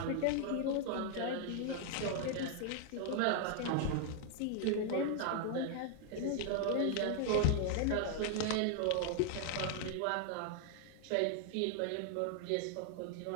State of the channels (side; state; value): both; different; correlation 0.00